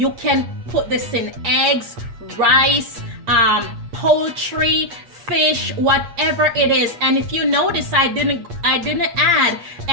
can put this in eggs, rice, poultry, fish, whatever it is. And if you notice, I didn't add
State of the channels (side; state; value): left; late; 8.4 ms